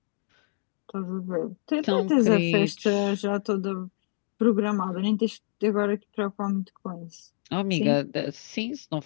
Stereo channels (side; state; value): right; silent; digital silence